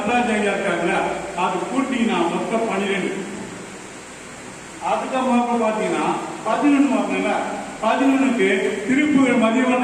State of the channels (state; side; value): identical; both; correlation 1.00